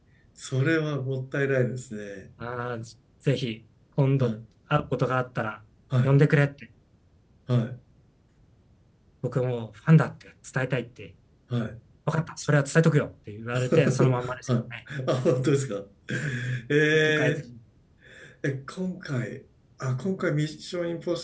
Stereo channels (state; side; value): identical; both; correlation 1.00